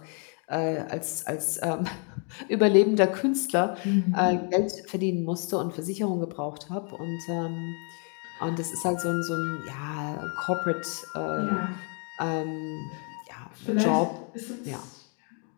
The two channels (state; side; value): quieter; right; 39.6 dB